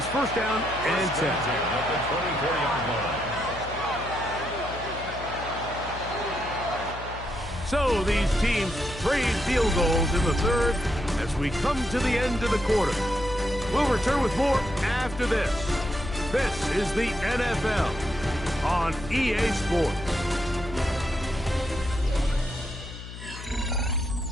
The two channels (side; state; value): left; noise; hum, 12 dB below the sound